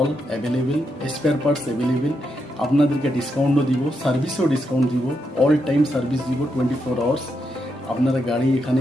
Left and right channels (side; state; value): both; normal; correlation 0.82